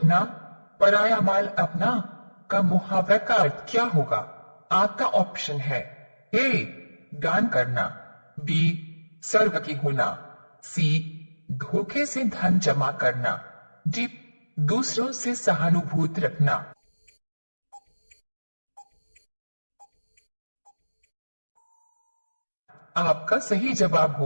पराया माल अपना का मुहावरा का अर्थ क्या होगा? आपका ऑप्शन है ए दान करना, बी सर्वकी होना, सी धोखे से धन जमा करना, डी दूसरों से सहानुभूति रखना। आपका सही जवाब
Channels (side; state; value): both; inverted; correlation -1.00